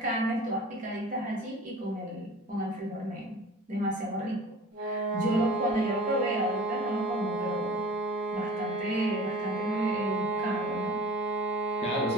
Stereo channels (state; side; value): normal; both; correlation 0.41